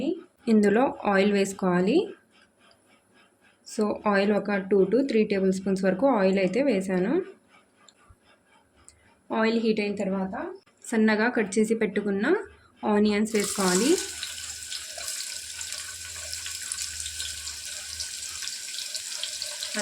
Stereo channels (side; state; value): both; identical; correlation 1.00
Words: ఇందులో ఆయిల్ వేసుకోవాలి. సో ఆయిల్ ఒక 2 to 3 టేబుల్ స్పూన్స్ వరకు ఆయిల్ అయితే వేసాను. ఆయిల్ హీట్ అయిన తర్వాత సన్నగా కట్ చేసి పెట్టుకున్న ఆనియన్స్ వేసుకోవాలి.